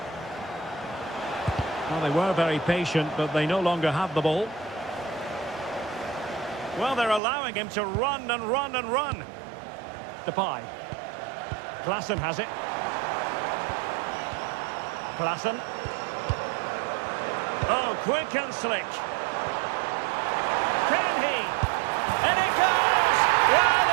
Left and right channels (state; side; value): drops out; left; at 7.2 s